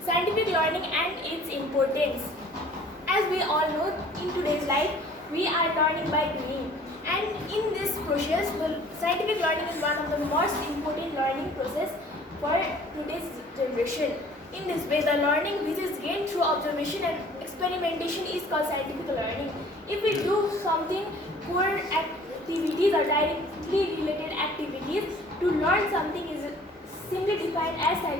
and its importance. As we all know, in today's life, we are learning by doing. And in this process, scientific learning is one of the most important learning process for today's generation. In this way, the learning which is gained through observation and experimentation is called scientific learning. If we do something core activities or directly related activities, to learn something is simply defined as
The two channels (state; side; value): normal; both; correlation 0.51